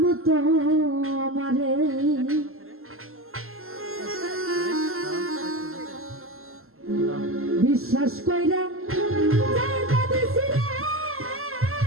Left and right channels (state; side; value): late; left; 0.62 ms